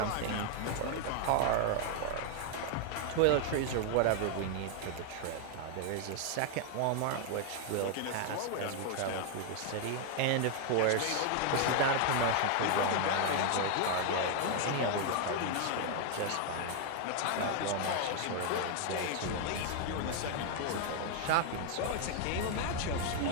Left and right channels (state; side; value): different; both; correlation 0.00